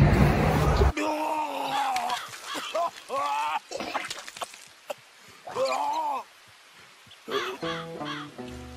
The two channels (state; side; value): identical; both; correlation 1.00